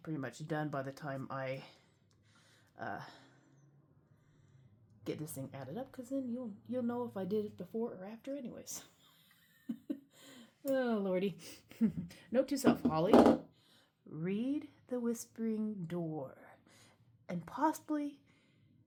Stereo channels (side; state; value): both; identical; correlation 1.00